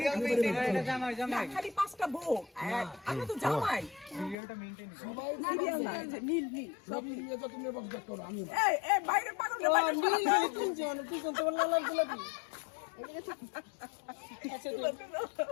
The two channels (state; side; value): drops out; right; at 4.4 s